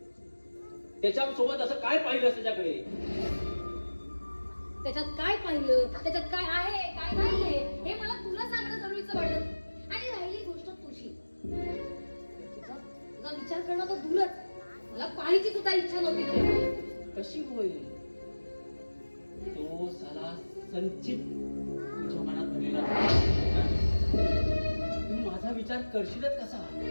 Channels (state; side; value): inverted; both; correlation -1.00